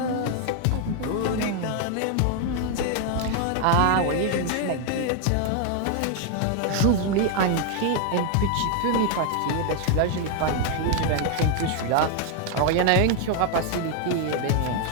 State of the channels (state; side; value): different; both; correlation 0.00